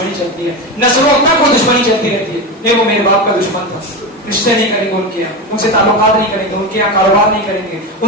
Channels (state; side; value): normal; both; correlation 0.19